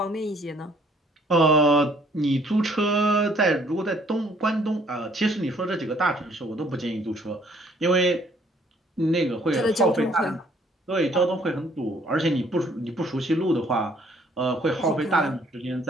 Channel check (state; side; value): normal; both; correlation 0.62